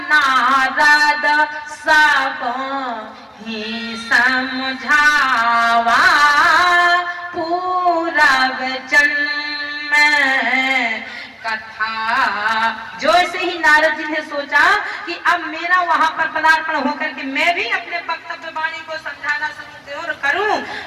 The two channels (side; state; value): both; identical; correlation 1.00